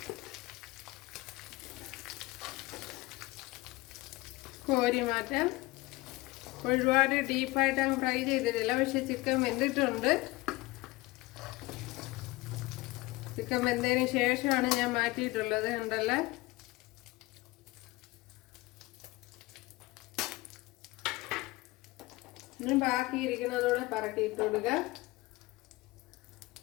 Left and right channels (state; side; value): quieter; right; 21.4 dB